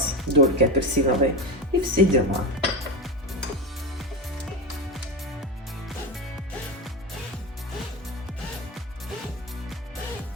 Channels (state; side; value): normal; both; correlation 0.19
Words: дольки апельсиновые, и все дела.